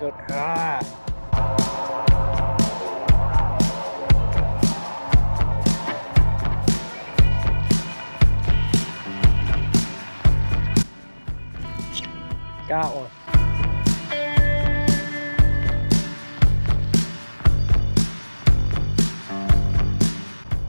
Ah! Got one.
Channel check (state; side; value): inverted; both; correlation -1.00